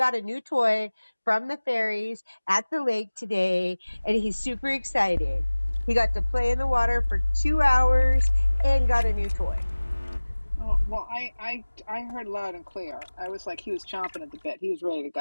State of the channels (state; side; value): inverted; both; correlation -1.00